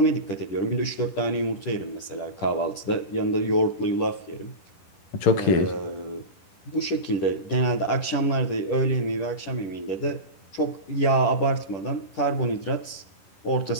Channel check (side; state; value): right; late; 10 ms